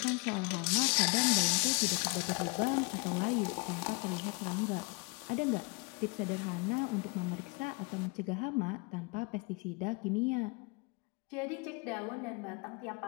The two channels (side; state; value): right; quieter; 29.7 dB